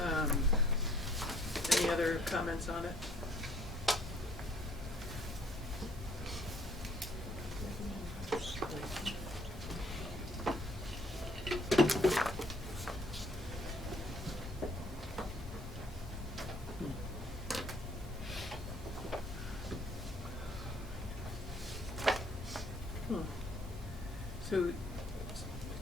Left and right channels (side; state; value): both; normal; correlation 0.61